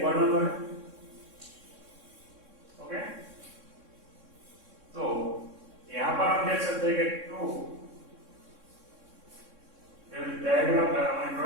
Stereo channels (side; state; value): left; late; 3.6 ms